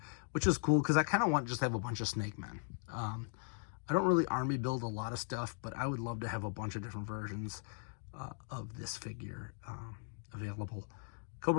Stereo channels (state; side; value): silent; right; 52 dB below the other